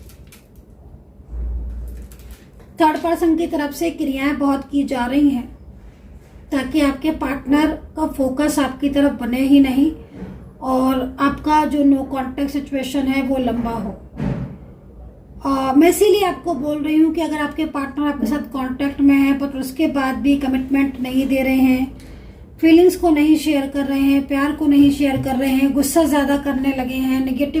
थर्ड पर्सन की तरफ से क्रियाएं बहुत की जा रही हैं ताकि आपके पार्टनर का फोकस आपकी तरफ बने ही नहीं और आपका जो नो कांटेक्ट सिचुएशन है वो लंबा हो। मैं इसीलिए आपको बोल रही हूँ कि अगर आपके पार्टनर आपके साथ कांटेक्ट में है पर उसके बाद भी कमिटमेंट नहीं दे रहे हैं, फीलिंग्स को नहीं शेयर कर रहे हैं, प्यार को नहीं शेयर कर रहे हैं, गुस्सा ज़्यादा करने लगे हैं,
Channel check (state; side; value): identical; both; correlation 1.00